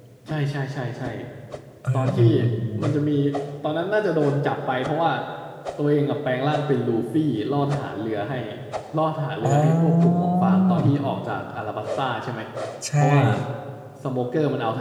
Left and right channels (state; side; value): identical; both; correlation 1.00